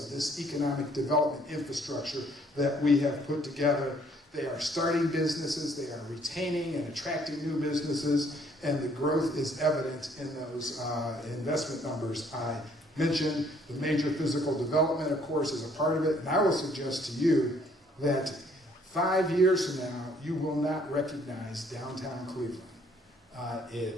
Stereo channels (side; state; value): both; normal; correlation 0.63